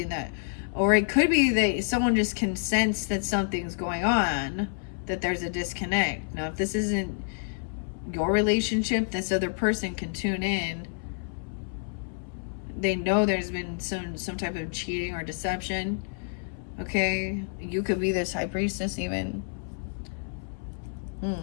that, or it could be that someone just can sense that something's going on, that there's a disconnect. Now, if this isn't your relationship, this other person can tune in. They know there's been some type of cheating or deception. Okay? You could be this High Priestess even.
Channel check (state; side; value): silent; right; 59 dB below the other